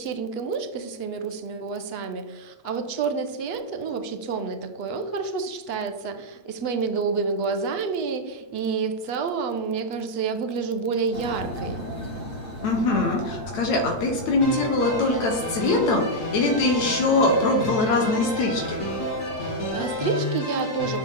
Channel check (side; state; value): right; late; 9.0 ms